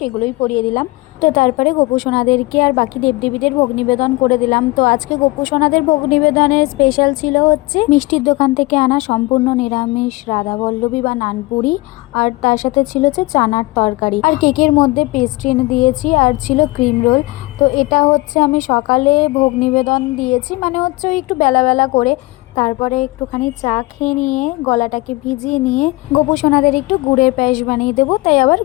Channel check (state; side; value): quieter; right; 22.0 dB